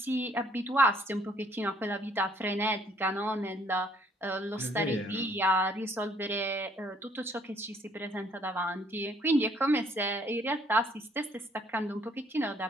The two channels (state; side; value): normal; both; correlation 0.64